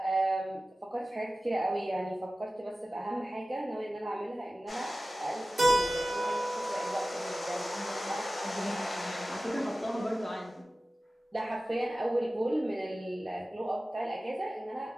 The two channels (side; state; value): both; normal; correlation 0.96